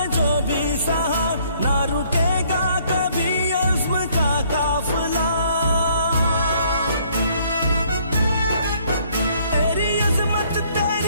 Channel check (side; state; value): both; inverted; correlation -0.63